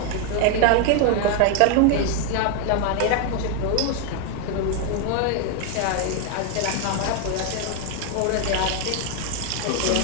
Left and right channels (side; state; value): both; different; correlation 0.00